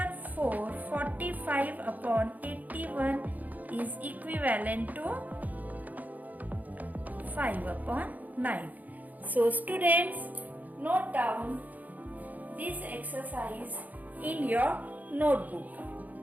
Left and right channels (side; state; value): left; late; 0.080 ms